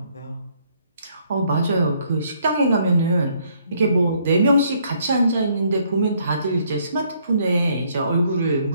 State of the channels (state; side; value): inverted; both; correlation -0.67